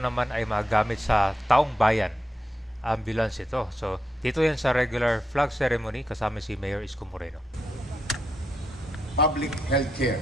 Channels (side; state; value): both; normal; correlation 0.84